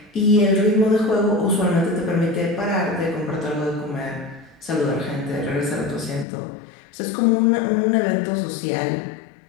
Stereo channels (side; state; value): right; drops out; at 6.2 s